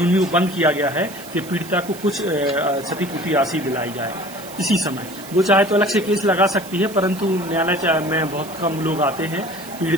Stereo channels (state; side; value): noise; right; hiss, 17 dB below the sound